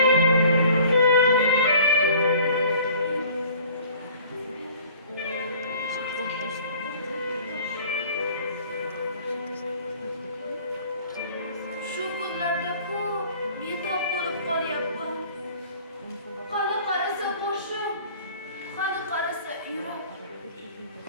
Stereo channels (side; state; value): both; inverted; correlation -0.51